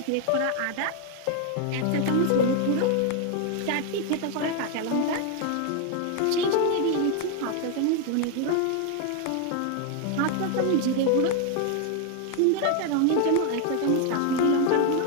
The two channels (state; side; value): different; both; correlation 0.01